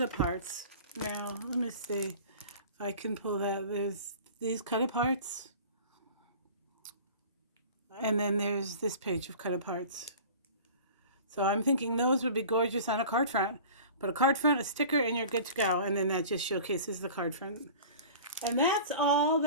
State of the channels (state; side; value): inverted; both; correlation -0.41